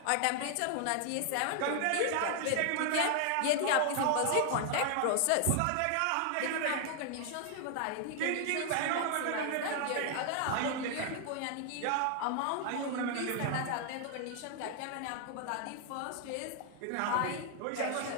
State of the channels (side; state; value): both; different; correlation 0.00